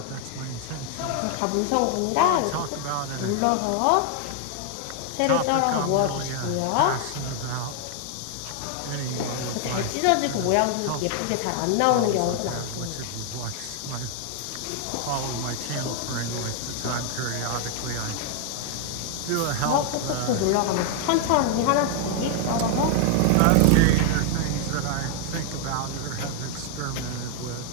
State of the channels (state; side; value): different; both; correlation 0.00